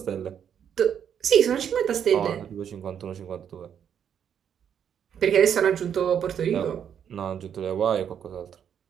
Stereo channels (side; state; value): left; quieter; 8.5 dB